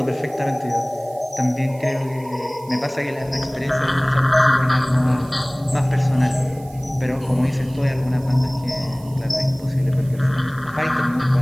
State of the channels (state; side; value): noise; right; hiss, 24 dB below the sound